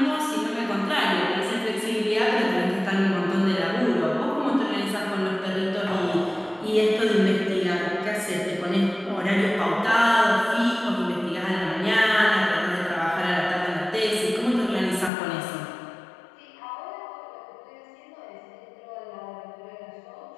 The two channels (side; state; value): right; drops out; at 15.1 s